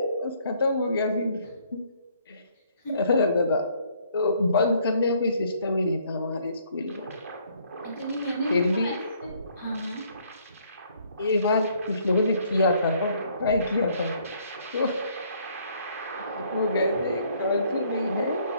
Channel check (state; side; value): inverted; both; correlation -0.65